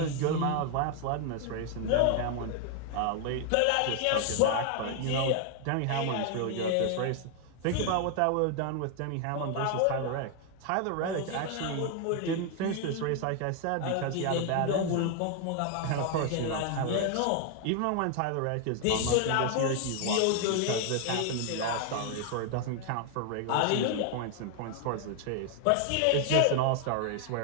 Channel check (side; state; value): both; different; correlation 0.00